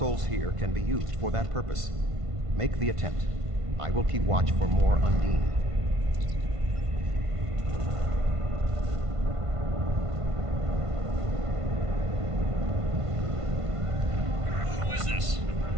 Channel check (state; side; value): late; left; 1.5 ms